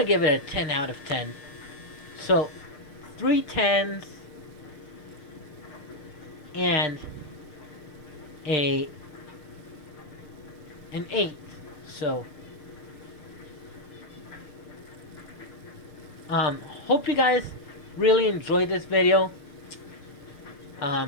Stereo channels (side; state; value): right; late; 6.6 ms